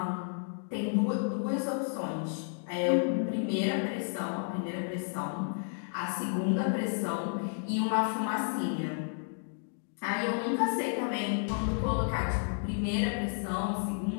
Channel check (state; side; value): silent; right; digital silence